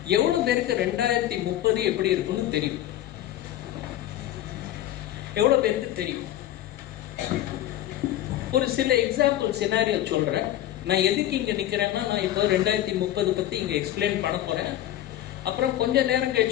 எவ்வளவு பேருக்கு 2030 எப்படி இருக்கும்னு தெரியும்? எவ்வளவு பேருக்கு தெரியும்? ஒரு சில எக்ஸாம்பிள் சினாரியோ சொல்றேன். நான் எதுக்கு இங்க நிக்கிறேன்னா, நான் இப்போ 2030 பத்தி இங்க எக்ஸ்பிளைன் பண்ண போறேன். அப்புறம் கொஞ்ச நேரம்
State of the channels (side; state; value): right; quieter; 13.0 dB